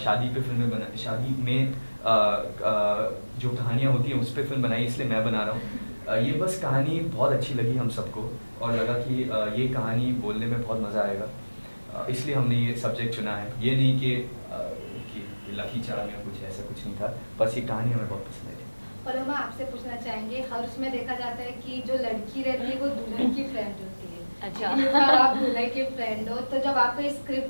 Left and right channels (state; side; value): inverted; both; correlation -1.00